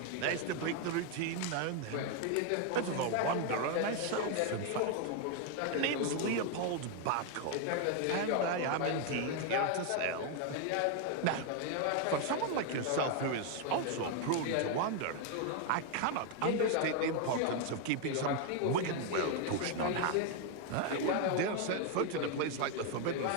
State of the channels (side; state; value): both; different; correlation 0.01